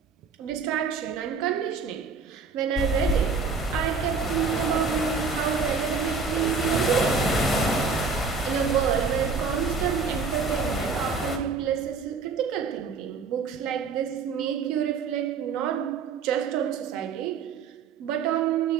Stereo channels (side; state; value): left; quieter; 4.9 dB